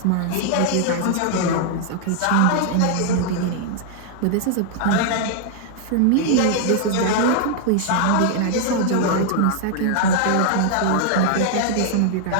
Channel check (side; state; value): both; different; correlation 0.00